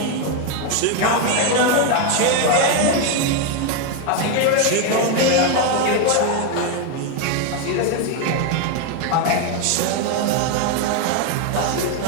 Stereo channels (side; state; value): both; different; correlation 0.02